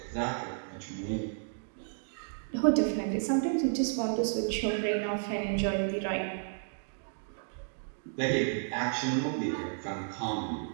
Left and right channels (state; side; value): silent; left; digital silence